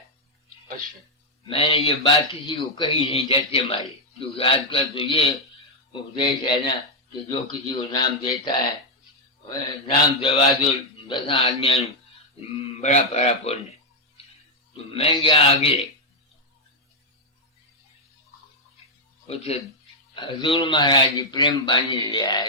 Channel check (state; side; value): normal; both; correlation -0.01